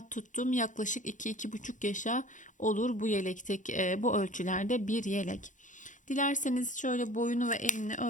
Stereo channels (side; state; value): right; late; 0.37 ms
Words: tuttum. Yaklaşık 2-2,5 yaşa olur bu yelektek, bu ölçülerde bir yelek. Dilerseniz şöyle boyunu ve enini